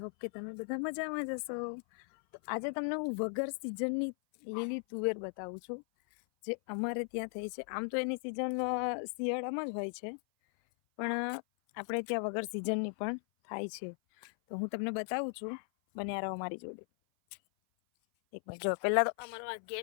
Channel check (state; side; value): silent; right; 53 dB below the other